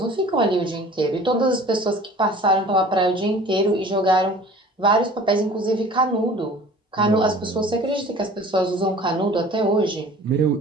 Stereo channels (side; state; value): both; normal; correlation 0.45